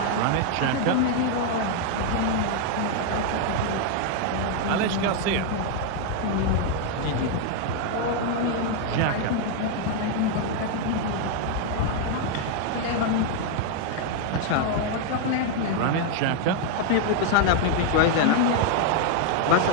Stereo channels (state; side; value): different; both; correlation 0.00